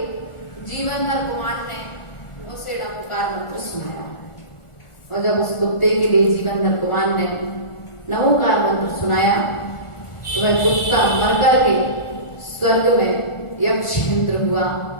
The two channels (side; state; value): right; late; 1.4 ms